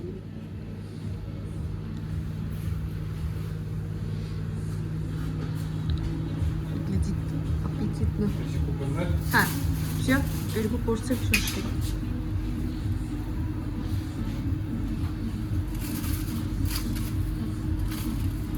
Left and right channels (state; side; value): identical; both; correlation 1.00